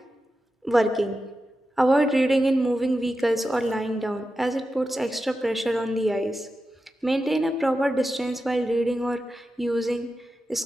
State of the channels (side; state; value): both; normal; correlation 0.91